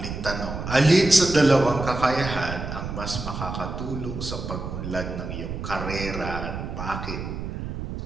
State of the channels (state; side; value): noise; right; rumble, 6 dB below the sound